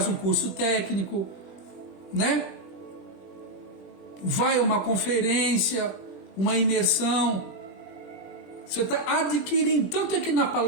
um curso técnico, né? Vai a uma conferência, uma imersão. Você está adquirindo. Tanto é que na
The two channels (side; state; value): right; late; 20 ms